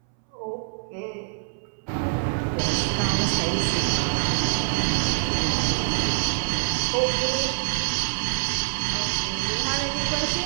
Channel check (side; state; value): left; silent; 62 dB below the other